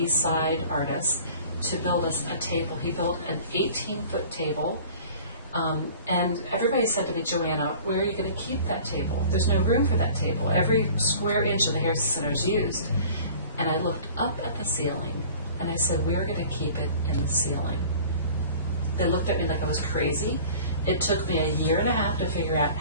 Side artist, to build us a table. He built an 18-foot table. And everybody said to me, Joanna, where are you going to keep that table? There's no room for that table. Every square inch of the Harrison Center is used. And I looked up at the ceiling, and I said, we're going to keep it in the ceiling. They looked at me like I was crazy. It took me 1.5 years to figure out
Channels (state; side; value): inverted; both; correlation -0.45